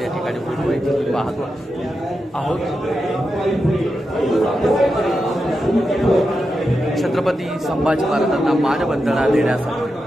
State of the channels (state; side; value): normal; both; correlation 0.88